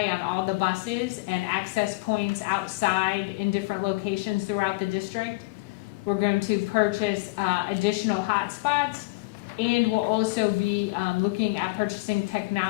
on all the buses and access points outside in different locations throughout the district. We're going to purchase additional hotspots, and we'll also be looking at purchasing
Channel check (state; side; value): quieter; right; 24.4 dB